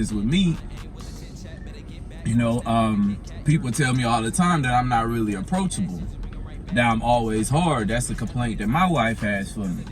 with me, you know, people tell me all the time that I'm not really approachable, that I'm always hard. That's a complaint that my wife has for me,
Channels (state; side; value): identical; both; correlation 1.00